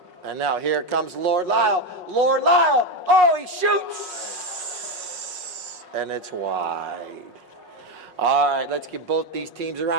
And now here comes Lord Lyle. Oh, he shoots! And it's wide. All right, let's give both these teams a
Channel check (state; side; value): late; left; 5.5 ms